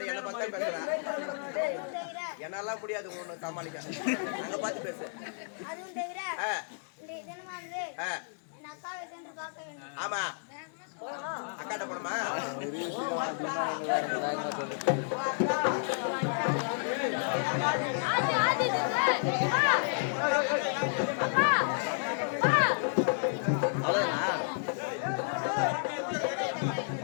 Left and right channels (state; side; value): silent; right; digital silence